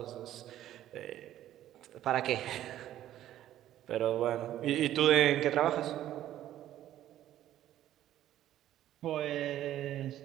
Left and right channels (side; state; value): left; quieter; 12.6 dB